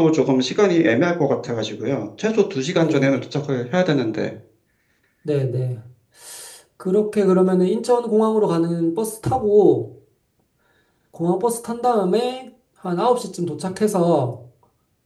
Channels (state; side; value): identical; both; correlation 1.00